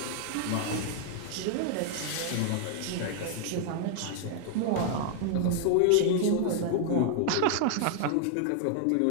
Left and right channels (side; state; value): both; different; correlation 0.00